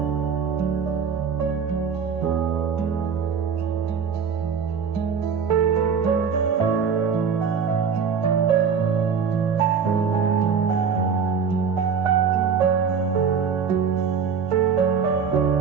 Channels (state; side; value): quieter; left; 6.4 dB